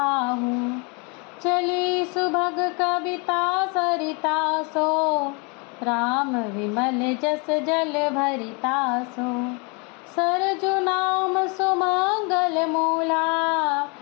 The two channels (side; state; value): right; quieter; 32.2 dB